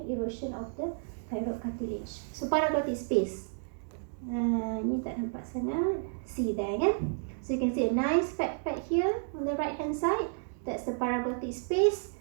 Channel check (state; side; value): silent; left; digital silence